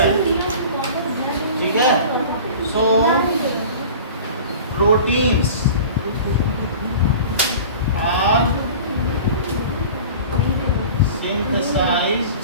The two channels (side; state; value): both; inverted; correlation -0.39